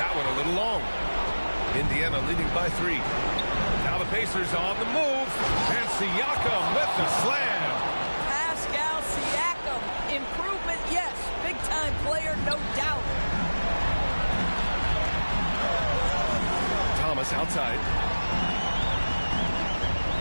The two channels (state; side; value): inverted; both; correlation -1.00